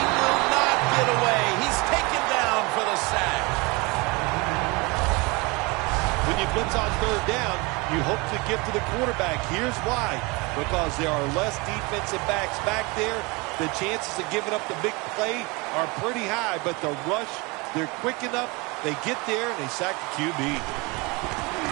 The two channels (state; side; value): quieter; left; 26.6 dB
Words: not get away. He's taken down for the sack. When you blitz on third down, you hope to get to the quarterback. Here's why. Because there are less defensive backs back there. The chances of giving up the big play are pretty high, but the rush, they're quick enough. They get there and they sack the QB.